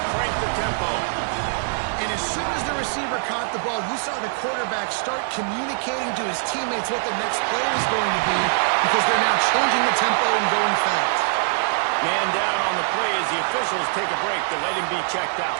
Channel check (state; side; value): silent; left; digital silence